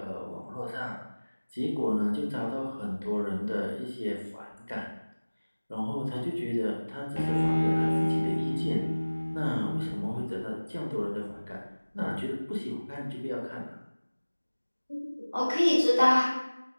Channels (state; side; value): inverted; both; correlation -1.00